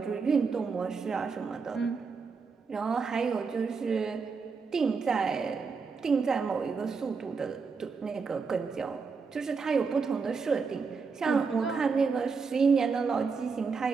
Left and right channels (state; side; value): quieter; left; 5.0 dB